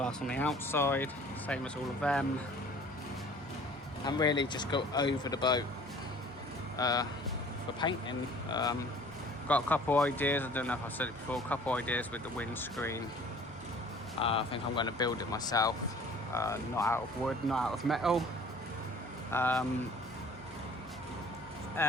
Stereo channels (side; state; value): both; normal; correlation 0.50